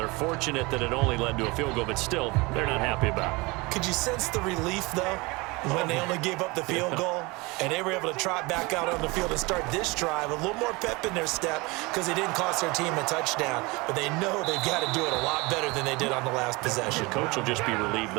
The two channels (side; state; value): left; quieter; 24.8 dB